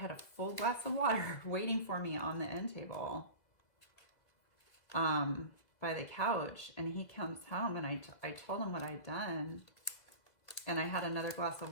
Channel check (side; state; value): right; late; 2.2 ms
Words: a full glass of water waiting for me on the end table by the couch. And he comes home and I told him what I'd done. And I had another glass of